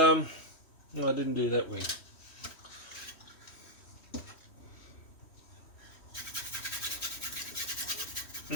didn't do that wing.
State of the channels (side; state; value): right; late; 3.1 ms